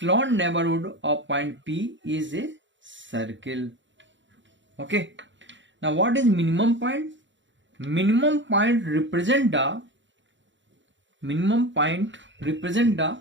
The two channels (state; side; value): late; left; 0.54 ms